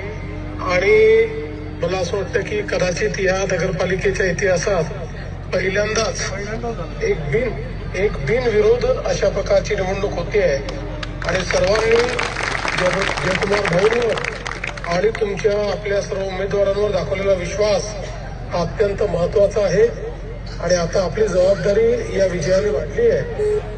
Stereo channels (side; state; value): both; identical; correlation 1.00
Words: आणि मला असं वाटतं की कदाचित या नगरपालिकेच्या इतिहासात पहिल्यांदाच एक बिनविरोध अशा प्रकारची निवडणूक होती आहे आणि सर्वांनी जयकुमार भाऊंवर आणि तुमच्या आपल्या सर्व उमेदवारांवर दाखवलेला विश्वास हा अत्यंत महत्वाचा आहे आणि आता आपली जबाबदारी या विजयाने वाढली आहे।